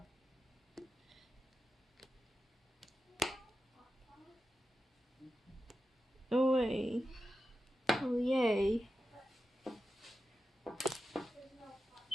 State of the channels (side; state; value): both; normal; correlation 0.91